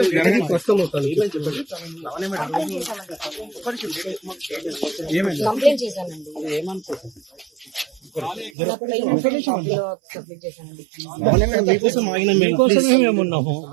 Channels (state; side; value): drops out; left; at 8.5 s